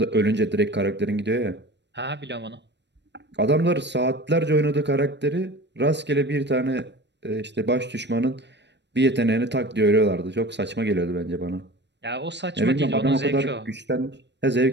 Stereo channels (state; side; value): late; left; 0.51 ms